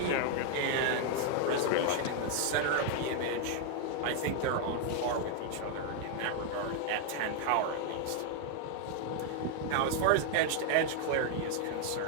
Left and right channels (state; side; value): different; both; correlation 0.00